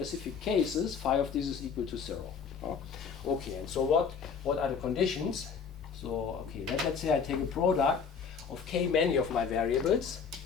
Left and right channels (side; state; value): right; quieter; 6.1 dB